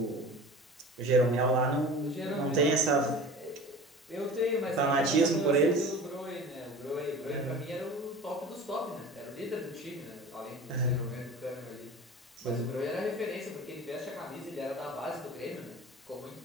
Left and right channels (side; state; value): both; normal; correlation 0.38